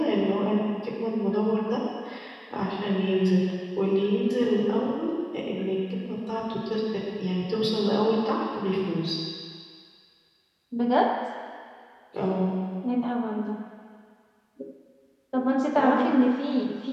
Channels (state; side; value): identical; both; correlation 1.00